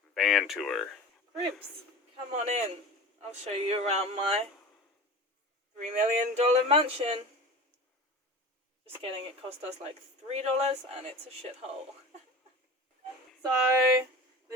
van tour. Ribs, come on in. I'll show you around my $3 million mansion. Just kidding, it cost us like $3 and it's a shithole. So,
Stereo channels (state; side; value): normal; both; correlation 0.35